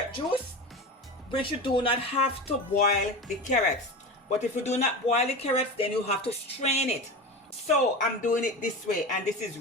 juice, which you do not have to boil the carrots. But if you do not boil the carrots, then you have to strain it. So I'm doing it this way, and this is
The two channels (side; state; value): both; normal; correlation 0.27